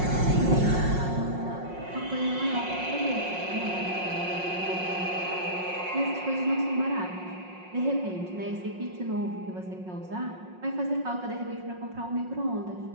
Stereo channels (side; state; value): left; late; 5.5 ms